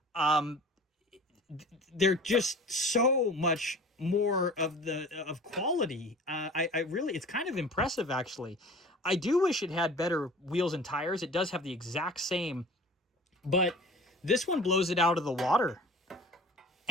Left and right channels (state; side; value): normal; both; correlation 0.43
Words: um, they're just so much more of quality. I really, it's kind of impressive, actually. I do wish it had better wheels and tires. It does have the exact same, but this one blows it out of the water.